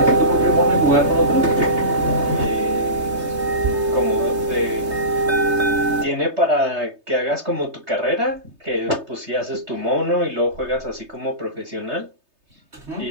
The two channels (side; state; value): left; late; 3.2 ms